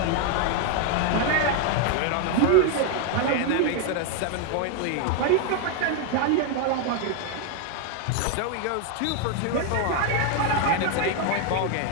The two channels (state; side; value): different; both; correlation 0.01